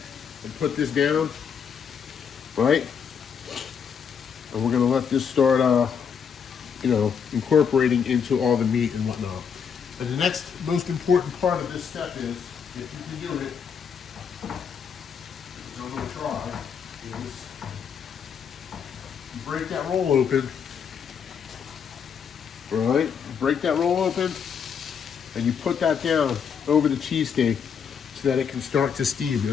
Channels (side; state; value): right; quieter; 7.0 dB